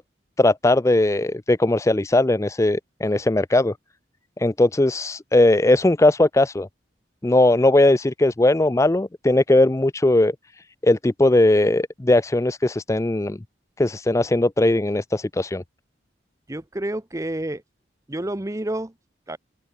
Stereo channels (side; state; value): both; normal; correlation 0.80